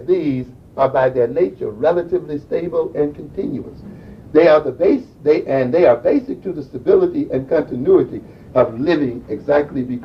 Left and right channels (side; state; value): both; identical; correlation 1.00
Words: these, are by their nature relatively stable and continuous. They are basic to the stability and continuity of living exactly